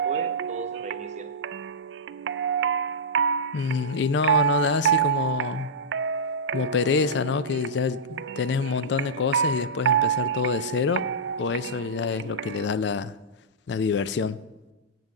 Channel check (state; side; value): normal; both; correlation -0.14